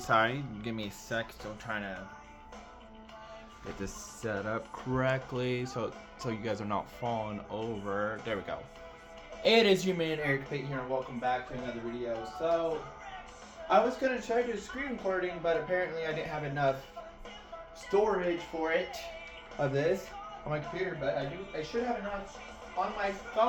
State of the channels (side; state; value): both; identical; correlation 1.00